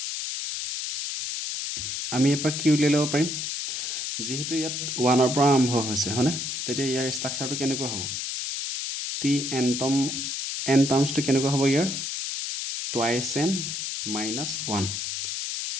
আমি এপাক কি উলিয়াই ল'ব পাৰিম যেহেতু ইয়াত 1 পৰা আৰম্ভ হৈছে হয়নে তেতিয়া ইয়াৰ ষ্ট্ৰাকচাৰটো কেনেকুৱা হ'ব টি এন টাৰ্মছটো কেনেকুৱা হ'ব ইয়াৰ টুৱাইছ এন মাইনাছ 1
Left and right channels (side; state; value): left; noise; hiss, 3 dB below the sound